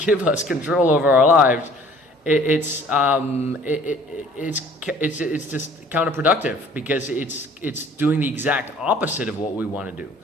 us control over our lives, it's just counterproductive, because it's doing the exact opposite of what we want to do.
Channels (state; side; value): normal; both; correlation 0.53